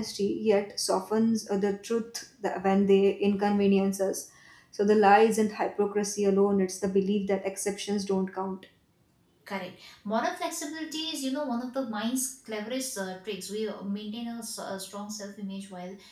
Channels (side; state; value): both; identical; correlation 1.00